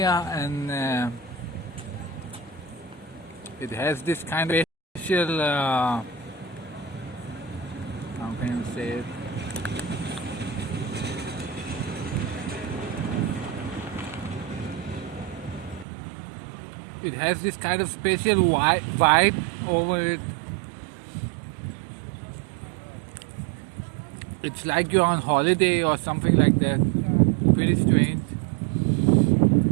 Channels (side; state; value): left; drops out; at 15.9 s